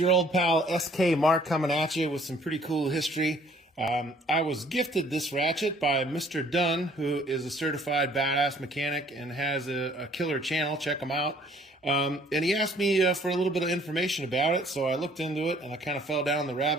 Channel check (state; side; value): normal; both; correlation 0.58